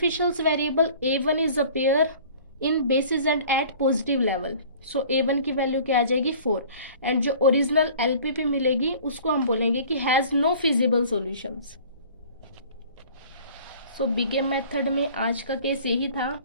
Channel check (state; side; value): inverted; both; correlation -0.47